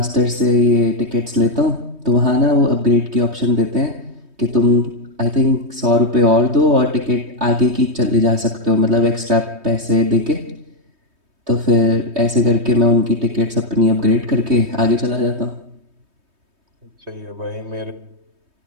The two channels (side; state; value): left; late; 3.2 ms